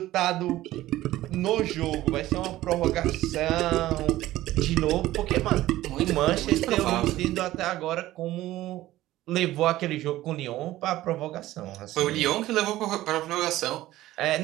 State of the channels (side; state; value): left; quieter; 15.6 dB